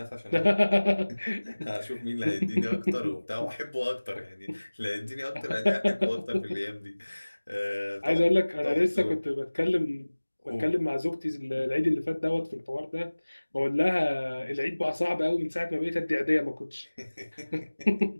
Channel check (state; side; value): inverted; both; correlation -1.00